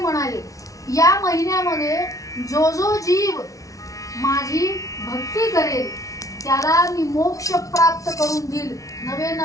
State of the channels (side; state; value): right; late; 0.17 ms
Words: म्हणाले, या महिन्यामध्ये जो जो जीव माझी भक्ती करेल त्याला मी मोक्ष प्राप्त करून देईल, नवे